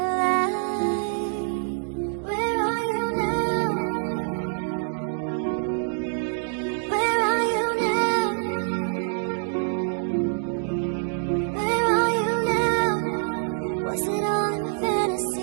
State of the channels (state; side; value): silent; left; 61 dB below the other